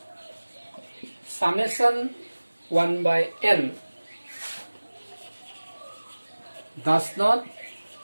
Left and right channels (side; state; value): both; inverted; correlation -1.00